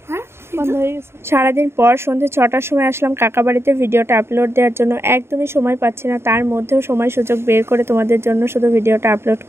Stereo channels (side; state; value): left; late; 0.12 ms